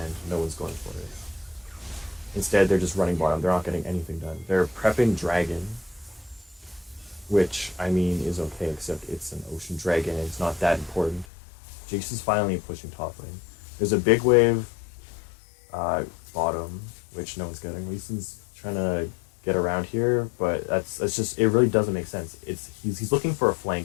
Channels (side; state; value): right; drops out; at 11.2 s